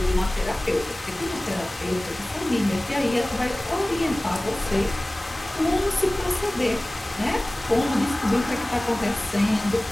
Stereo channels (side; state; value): both; normal; correlation 0.98